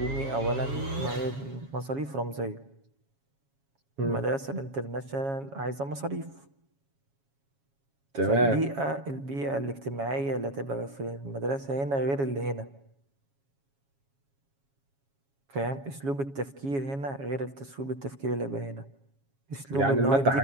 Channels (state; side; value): late; left; 7.3 ms